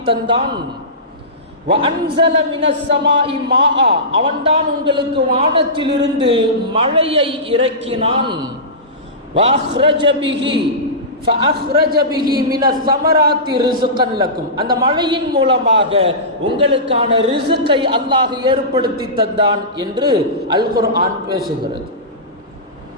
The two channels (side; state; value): both; normal; correlation -0.19